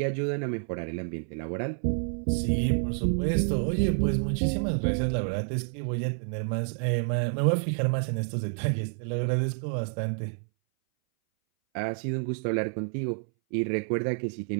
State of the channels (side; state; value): left; silent; 59 dB below the other